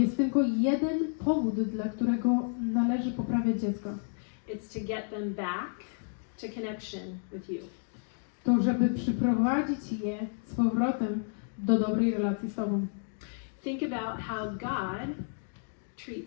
tylko jeden powód, dla którego należy poprawiać dziecko. It's to get them back to connection with you. To, żeby przyprowadzić je z powrotem do dobrej relacji z Tobą. Think about how God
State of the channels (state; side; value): silent; right; 57 dB below the other